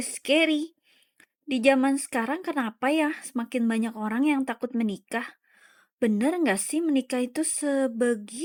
scary"? Di zaman sekarang kenapa ya semakin banyak orang yang takut menikah? Bener nggak sih menikah itu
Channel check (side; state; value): both; identical; correlation 1.00